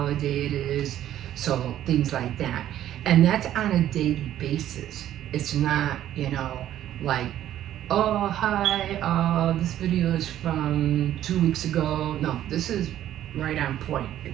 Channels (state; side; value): quieter; left; 12.1 dB